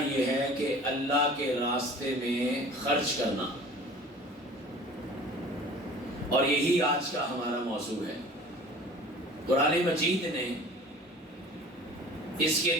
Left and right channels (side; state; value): both; normal; correlation 0.44